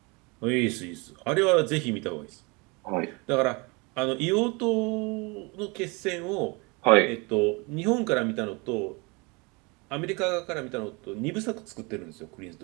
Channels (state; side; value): quieter; left; 28.1 dB